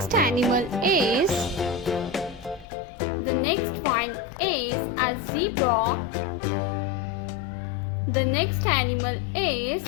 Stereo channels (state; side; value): drops out; right; at 2.7 s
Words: animal is a zebra. The next animal is